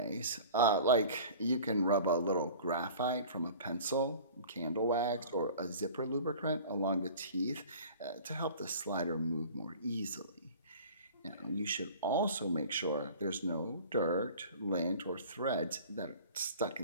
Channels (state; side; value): inverted; both; correlation -0.43